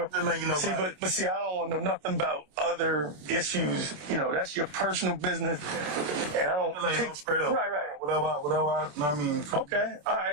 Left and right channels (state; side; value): late; left; 27 ms